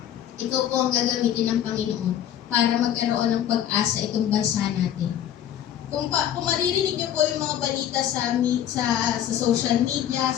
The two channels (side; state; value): right; quieter; 10.6 dB